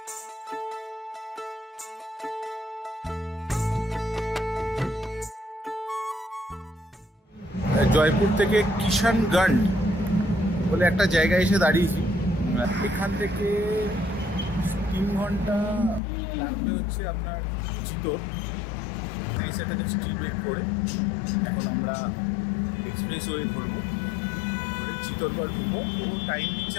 জয়পুর থেকে কিষানগঞ্জ বলে একটা জায়গায় এসে দাঁড়িয়েছি। এখান থেকে 3 ঘন্টা লাগবে হচ্ছে আপনার চিতোর। সেটাকে স্টিল ব্রেক করে এখন আমরা এক্সপ্রেস ওয়ে ধরবো, ধরে চিতোরগড় ঢুকবো। ও টাইম দিচ্ছে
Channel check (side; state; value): right; drops out; at 16.0 s